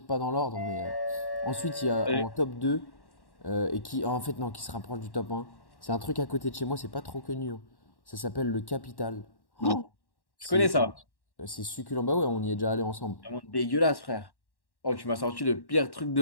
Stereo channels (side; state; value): right; late; 1.1 ms